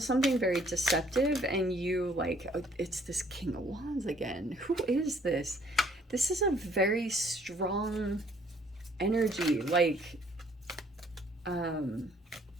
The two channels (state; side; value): normal; both; correlation 0.62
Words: very deceptive and you like, oh, it's this King of Wands again. Who is this? This is a very strong energy. Like, I